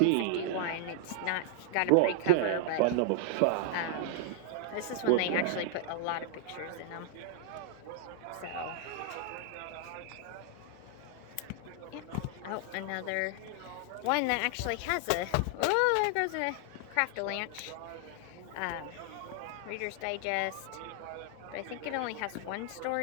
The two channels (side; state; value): both; different; correlation 0.00